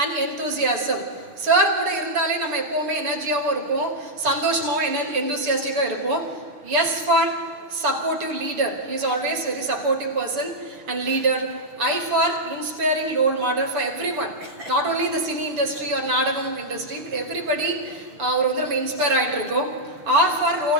and enthusiasm, sir கூட இருந்தாலே நம்ம எப்போவுமே எனர்ஜியாகவும் இருப்போம், சந்தோஷமாகவும் எந்தூசியாஸ்டிக்காக இருப்போம். S for supportive leader, he is always very supportive person and leader. I for inspiring role model for everyone, not only the cine industry or நாடகம் industry, but everybody அவர் வந்து நம்ம இன்ஸ்பயர் ஆகிட்டு இருக்கோம். R for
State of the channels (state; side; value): late; left; 6.8 ms